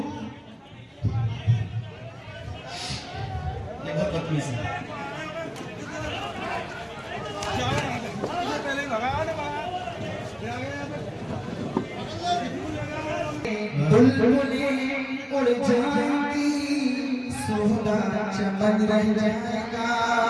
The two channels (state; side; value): identical; both; correlation 1.00